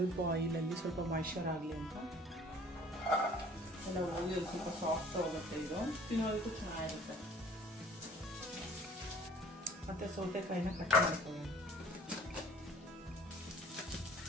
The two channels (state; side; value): normal; both; correlation 0.52